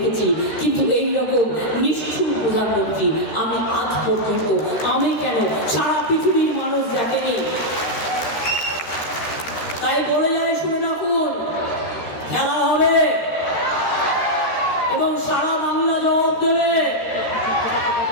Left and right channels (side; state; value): right; late; 13 ms